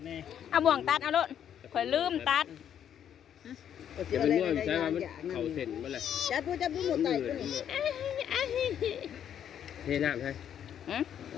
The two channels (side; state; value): right; quieter; 9.4 dB